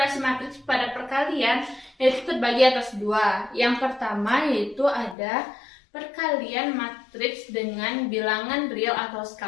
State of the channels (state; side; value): drops out; right; at 5.2 s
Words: pada perkalian yaitu terbagi atas dua. Yang pertama yaitu ada perkalian matriks dengan bilangan real atau